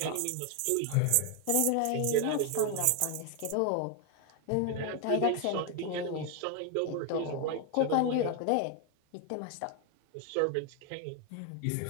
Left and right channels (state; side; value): different; both; correlation 0.01